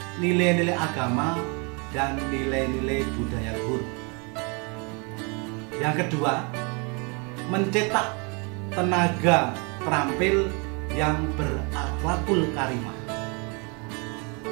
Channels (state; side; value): quieter; left; 33.0 dB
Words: nilai-nilai agama dan nilai-nilai budaya luhur. Yang kedua, mencetak tenaga terampil yang berakhlakul karimah.